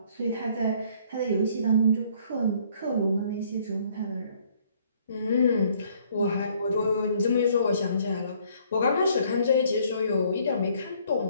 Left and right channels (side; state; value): both; inverted; correlation -0.62